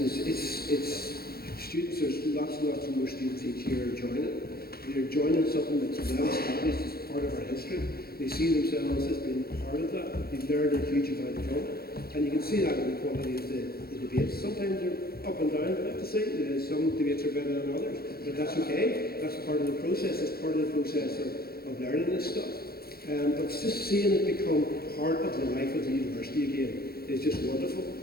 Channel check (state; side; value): late; right; 0.44 ms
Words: students. There's lots and lots of more students each year joining. They're joining something that's well established as part of our history. They see themselves as being part of that. They've learned a huge amount from it, and you can see that in the quality of the debates. Sometimes they're up and down, but I have to say, some debates are better than others, but that's okay. That's part of the process. It's part of the process of learning this stuff. But just seeing it become part of the life of the university again is just wonderful.